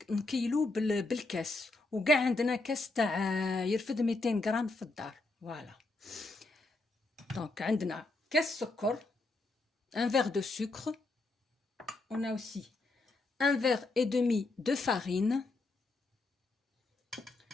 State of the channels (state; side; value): quieter; right; 3.1 dB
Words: نكيلو بالكاس، وكاع عندنا كاس تاع يرفد 200 غرام في الدار. فوالا دونك عندنا كاس سكر، un verre de sucre. On a aussi un verre et demi de farine.